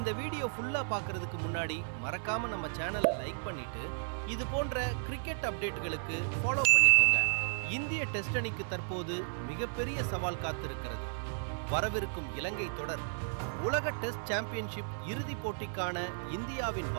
வீடியோ ஃபுல்லா பார்க்கிறதுக்கு முன்னாடி மறக்காம நம்ம சேனலை லைக் பண்ணிட்டு இது போன்ற கிரிக்கெட் அப்டேட்டுகளுக்கு ஃபாலோ பண்ணிக்கோங்க. இந்திய டெஸ்ட் அணிக்கு தற்போது மிகப்பெரிய சவால் காத்திருக்கிறது. வரவிருக்கும் இலங்கை தொடர் உலக டெஸ்ட் சாம்பியன்ஷிப் இறுதிப் போட்டிக்கான இந்தியாவின்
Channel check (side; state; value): left; silent; digital silence